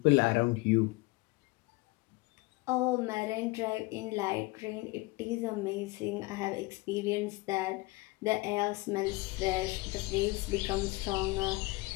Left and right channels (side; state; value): right; quieter; 23.5 dB